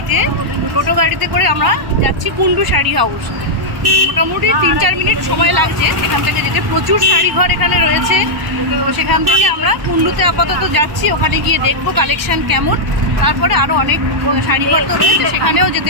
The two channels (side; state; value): left; late; 1.0 ms